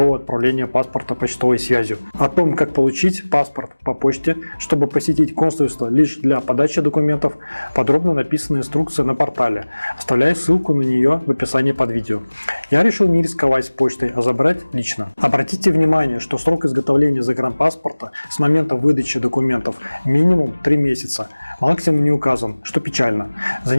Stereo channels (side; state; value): both; inverted; correlation -1.00